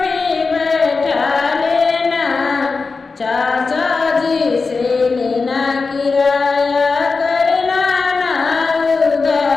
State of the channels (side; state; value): right; quieter; 4.3 dB